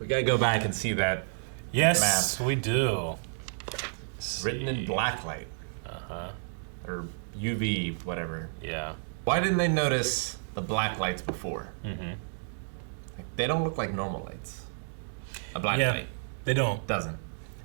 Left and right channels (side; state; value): left; silent; digital silence